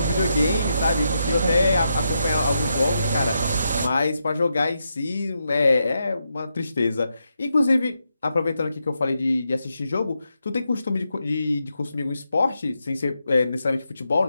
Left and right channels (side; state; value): both; inverted; correlation -0.83